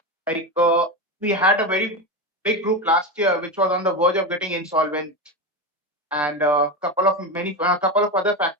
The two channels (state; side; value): normal; both; correlation 0.18